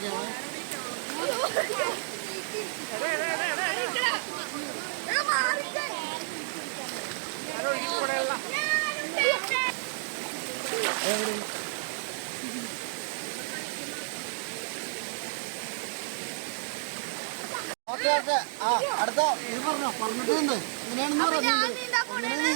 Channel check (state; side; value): silent; left; digital silence